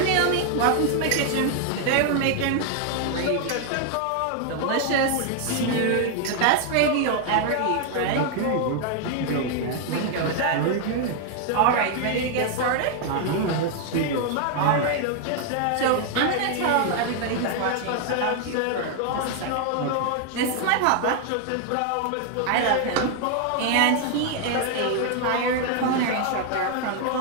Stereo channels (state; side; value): different; both; correlation 0.00